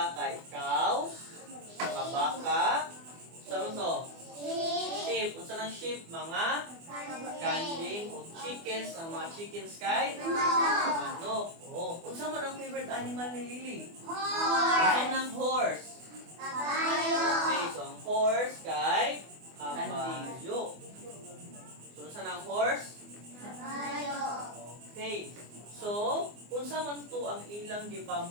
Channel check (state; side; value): late; left; 24 ms